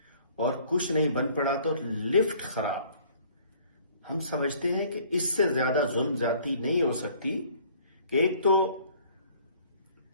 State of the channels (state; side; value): inverted; both; correlation -0.56